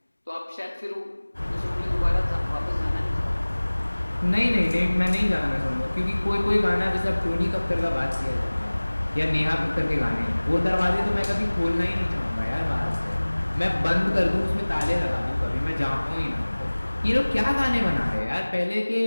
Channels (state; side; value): inverted; both; correlation -1.00